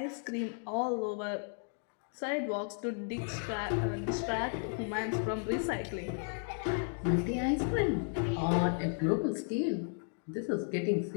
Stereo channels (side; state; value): right; silent; 55 dB below the other